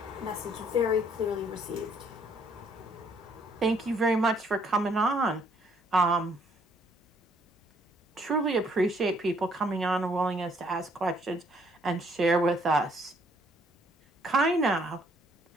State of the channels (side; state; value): both; normal; correlation 0.65